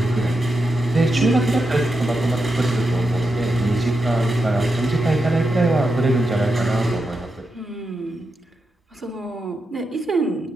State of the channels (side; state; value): both; normal; correlation 0.87